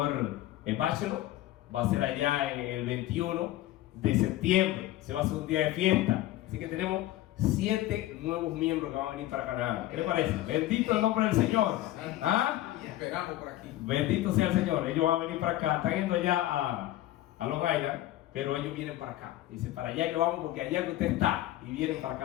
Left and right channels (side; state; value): right; quieter; 15.1 dB